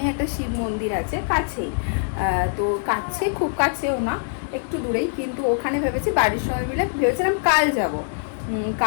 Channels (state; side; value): silent; right; digital silence